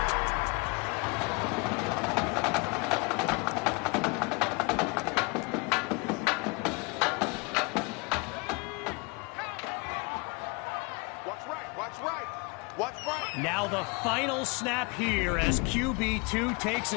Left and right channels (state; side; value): quieter; right; 29.4 dB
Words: Now the final snap here as QB2 takes